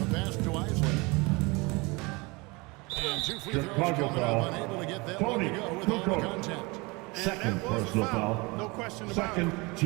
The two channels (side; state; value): left; quieter; 26.0 dB